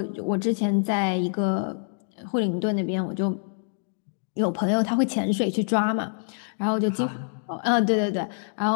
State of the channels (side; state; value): right; silent; digital silence